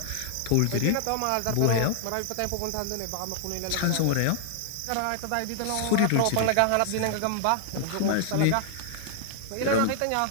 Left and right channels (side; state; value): both; different; correlation -0.01